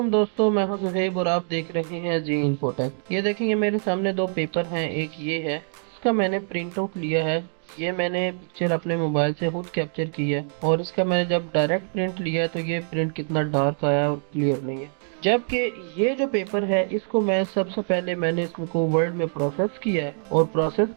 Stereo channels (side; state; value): left; silent; 56 dB below the other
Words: दोस्तों, मैं हूं ज़ुहैब और आप देख रहे हैं जी इन्फोटेक। ये देखेंगे मेरे सामने दो पेपर हैं। एक ये है, इसका मैंने प्रिंट आउट लिया है। ये मैंने पिक्चर अपने मोबाइल से खुद कैप्चर की है और इसका मैंने जब डायरेक्ट प्रिंट लिया है तो ये प्रिंट कितना डार्क आया और क्लियर नहीं है। जबकि ये जो पेपर है इसको मैं सबसे पहले मैंने इसको वर्ड में प्रोसेस किया है और प्रोसेस